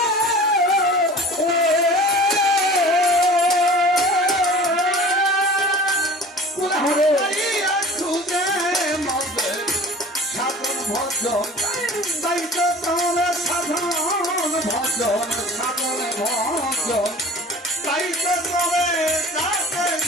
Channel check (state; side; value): normal; both; correlation 0.42